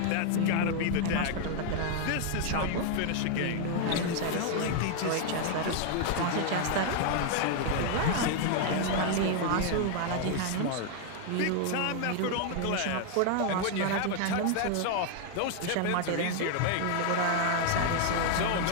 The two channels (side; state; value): both; different; correlation 0.00